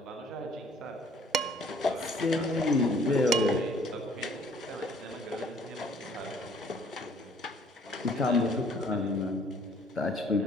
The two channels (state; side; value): normal; both; correlation 0.58